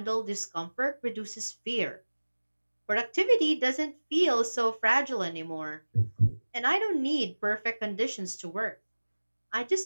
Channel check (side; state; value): both; inverted; correlation -1.00